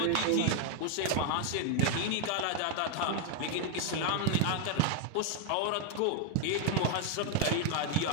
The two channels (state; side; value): different; both; correlation 0.00